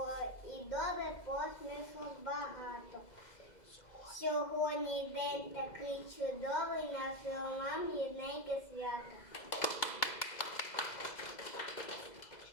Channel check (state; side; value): late; right; 2.0 ms